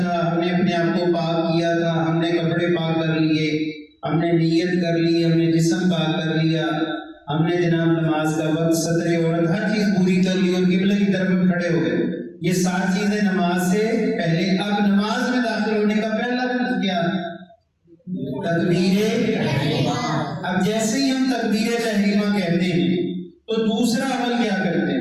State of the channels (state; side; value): identical; both; correlation 1.00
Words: ہم نے اپنے آپ کو پاک کیا تھا، ہم نے کپڑے پاک کر لیے، ہم نے نیت کر لی، ہم نے جسم پاک کر لیا، ہم نے جناب نماز کا وقت، سطر عورت، ہر چیز پوری کر لی اور قبلہ کی طرف کھڑے ہو گئے. یہ 7 چیزیں نماز سے پہلے. اب نماز میں داخل ہونے کا پہلا فرض کیا؟ تکبیر. اب جیسے ہی ہم تکبیر تحریمہ کہتے ہیں تو دوسرا عمل کیا کرتے